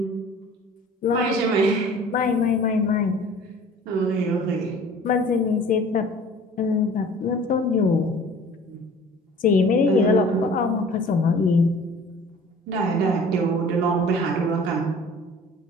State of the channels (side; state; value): both; normal; correlation 0.47